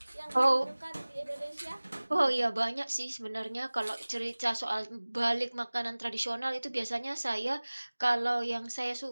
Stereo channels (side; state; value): both; inverted; correlation -1.00